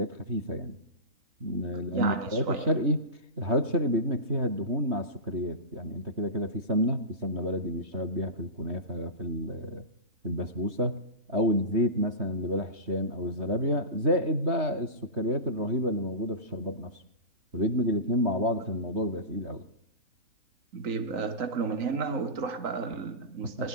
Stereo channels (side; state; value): left; late; 3.2 ms